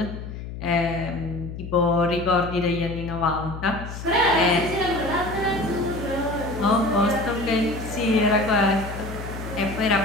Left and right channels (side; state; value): left; noise; hum, 9 dB below the sound